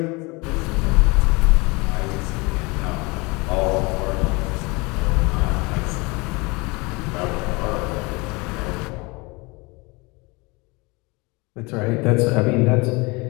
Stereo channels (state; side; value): quieter; right; 26.3 dB